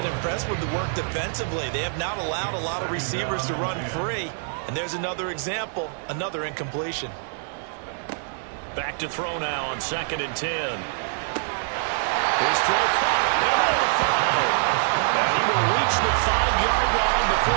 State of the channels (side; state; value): left; silent; 62 dB below the other